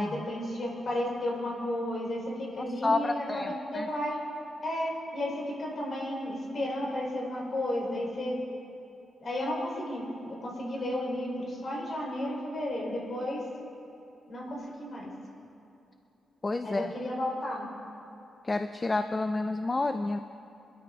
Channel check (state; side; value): normal; both; correlation 0.88